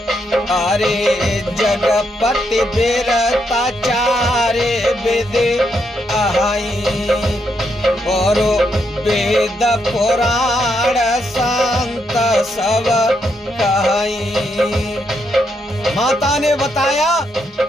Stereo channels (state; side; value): normal; both; correlation 0.79